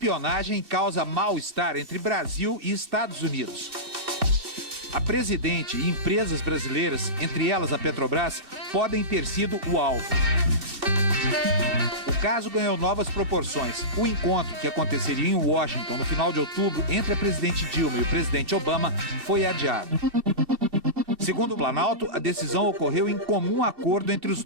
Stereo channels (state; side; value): late; left; 2.6 ms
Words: causa mal-estar entre Brasil e Estados Unidos. A presidente e empresas brasileiras, entre elas a Petrobras, podem ter sido o alvo. O caso ganhou novas proporções. O encontro, que aconteceria em Washington no final de outubro entre a presidente Dilma e o presidente Obama, foi adiado. Segundo o Planalto, a decisão ocorreu em comum acordo entre os